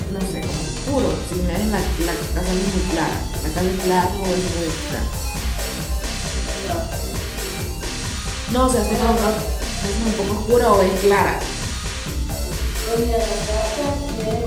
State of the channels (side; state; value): both; identical; correlation 1.00